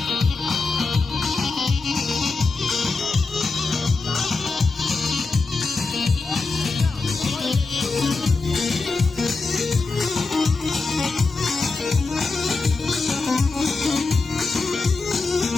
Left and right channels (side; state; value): right; quieter; 3.9 dB